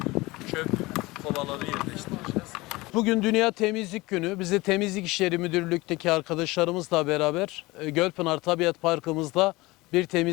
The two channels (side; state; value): right; quieter; 21.5 dB